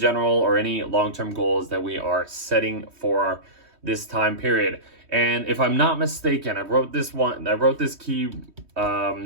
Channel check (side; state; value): left; late; 3.2 ms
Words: or any long-term goals that we are setting for this time period. And if I'm not mistaken, I wrote this key